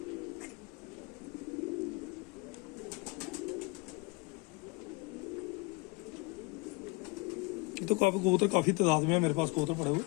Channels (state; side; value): quieter; right; 26.9 dB